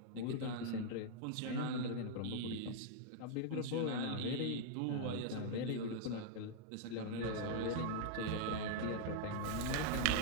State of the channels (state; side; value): different; both; correlation -0.01